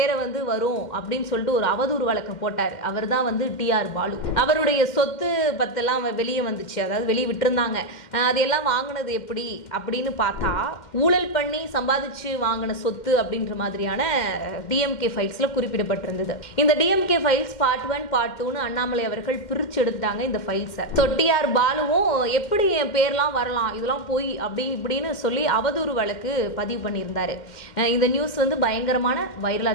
வந்து வரும் அப்படின்னு சொல்லிட்டு ஒரு அவதூறு வழக்கம் போட்டார். அவர் தான் வந்து டிஆர் பாலு. அவருடைய சொத்து பத்தெல்லாம் வெளியே வந்துச்சு, அதாவது வெளியே விட்டுருந்தாங்க. அதையெல்லாம் வாங்கினது எப்படி அப்படின்னு பார்த்தா ஊழல் பண்ணி சம்பாதிச்சு வாங்கின சொத்து அப்படின்ற மாதிரியான டிஎம்கே ஃபைல்ஸ்ல குறிப்பிடப்பட்டிருந்தது. இந்த டிஎம்கே ஃபைல்ஸ் பார்ட் 1 பார்ட் 2ன்னு அண்ணாமலை அவர்கள் பிரிச்சு எடுத்துட்டாங்க இந்த ஃபைல்ஸை. ஸோ டிஆர் பாலுவும் எப்படி என் பேர்லாம் வரலாம், இதெல்லாம் போய் அப்படி இப்படின்னு சொல்லி அவதூறு வழக்கு பதிவு பண்ணியிருந்தாரு. இந்த நியூஸ் வந்து பயங்கரமான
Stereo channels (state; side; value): late; right; 2.1 ms